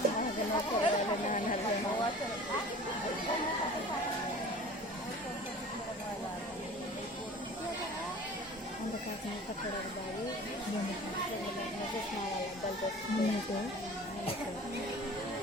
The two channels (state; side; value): normal; both; correlation 0.42